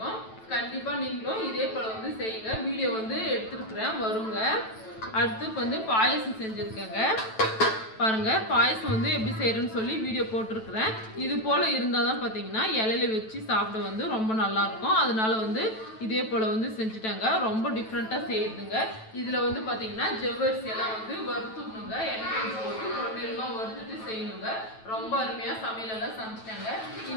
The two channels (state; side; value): late; right; 9.1 ms